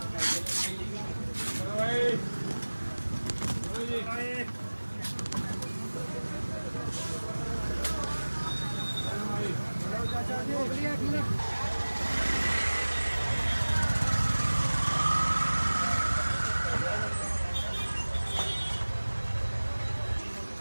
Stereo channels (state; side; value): inverted; both; correlation -1.00